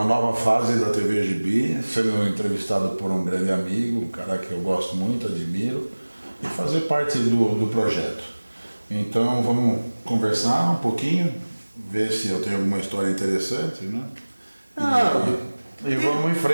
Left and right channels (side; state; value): both; inverted; correlation -1.00